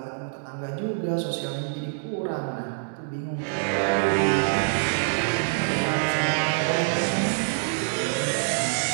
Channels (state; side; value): silent; left; 61 dB below the other